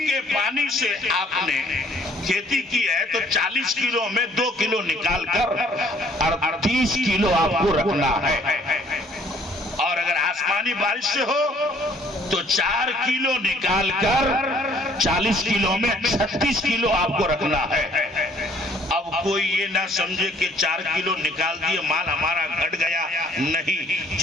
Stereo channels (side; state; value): both; normal; correlation 0.60